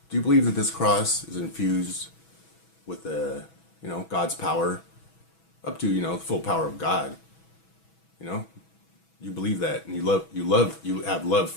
Do you believe that this cross is infused with God's power up to, the full power of God? You know, you believe that and you have love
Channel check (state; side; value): late; right; 6.2 ms